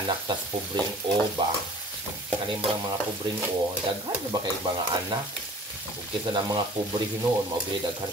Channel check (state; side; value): normal; both; correlation 0.47